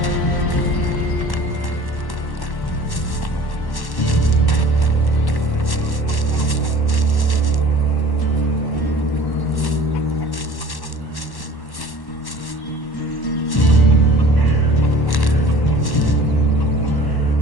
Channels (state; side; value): late; right; 1.1 ms